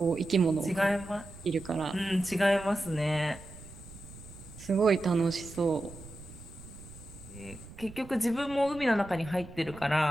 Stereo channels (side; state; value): right; noise; rumble, 17 dB below the sound